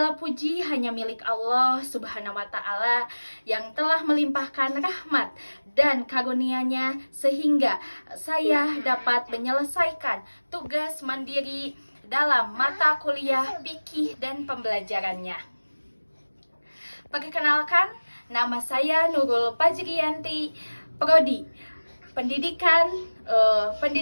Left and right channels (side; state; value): both; inverted; correlation -1.00